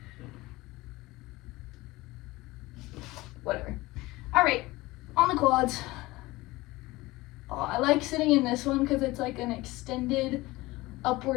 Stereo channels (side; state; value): right; quieter; 20.1 dB